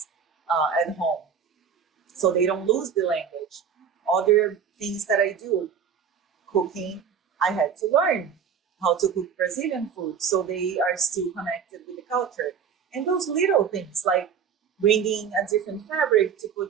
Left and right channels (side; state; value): left; quieter; 7.1 dB